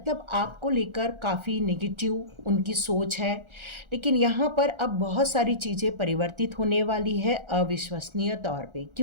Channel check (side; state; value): left; late; 1.4 ms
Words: आपको लेकर काफ़ी नेगेटिव उनकी सोच है। लेकिन यहाँ पर अब बहुत सारी चीज़ें परिवर्तित होने वाली है अविश्वसनीय तौर पे।